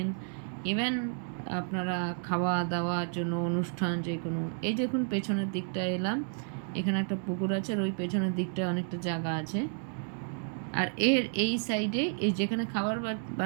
ইভেন আপনারা খাওয়া দাওয়ার জন্য অনুষ্ঠান যে কোনো। এই দেখুন পেছনের দিকটা এলাম, এখানে একটা পুকুর আছে, আর ওই পেছনের দিকটায় অনেকটা জায়গা আছে। আর এই সাইডে, এই যেখানে খাবার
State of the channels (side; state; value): left; silent; 57 dB below the other